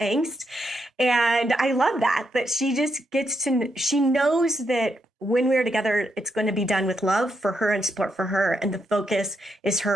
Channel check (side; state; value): both; normal; correlation 0.81